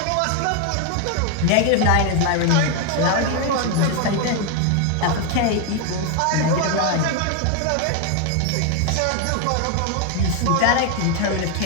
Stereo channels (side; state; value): both; different; correlation 0.01